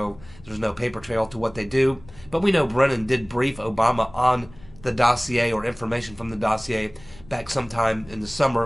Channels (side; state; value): left; noise; rumble, 22 dB below the sound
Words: there's no paper trail to what they do. But we know Brennan did brief Obama on the dossier, or information from the dossier, back sometime in the